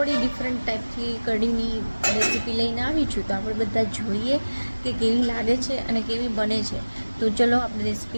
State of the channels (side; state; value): both; inverted; correlation -1.00